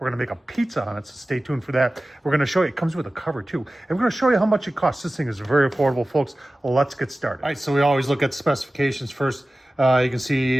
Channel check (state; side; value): normal; both; correlation 0.96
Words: to make a pizza on it, so stay tuned for that. We're going to show you, it comes with a cover too. And we're going to show you how much it costs. This thing is very affordable, folks. Let's get started. All right, so we always look at specifications first. You can see